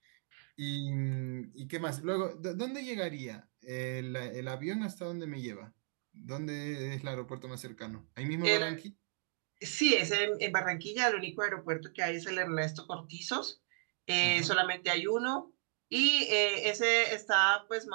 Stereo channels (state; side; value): silent; left; 54 dB below the other